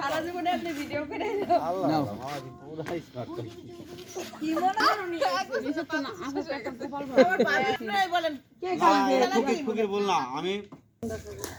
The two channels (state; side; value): identical; both; correlation 1.00